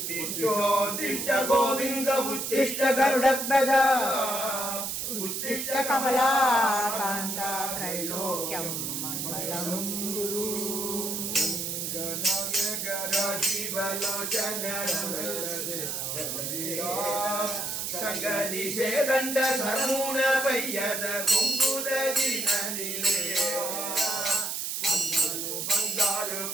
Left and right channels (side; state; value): right; noise; hiss, 3 dB below the sound